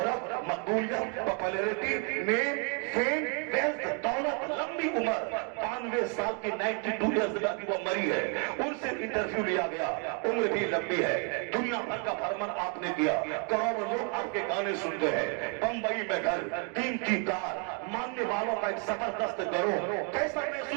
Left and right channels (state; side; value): quieter; left; 38.4 dB